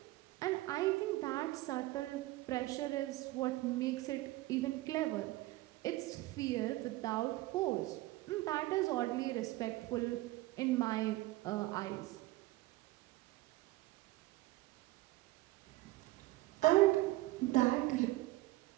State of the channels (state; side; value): quieter; left; 18.5 dB